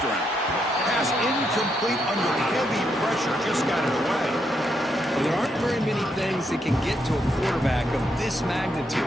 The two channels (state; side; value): normal; both; correlation 0.78